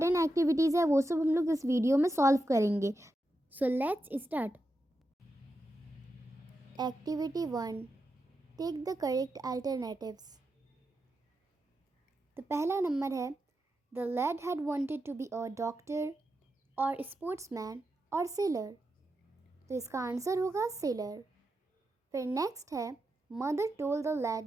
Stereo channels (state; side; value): normal; both; correlation 0.88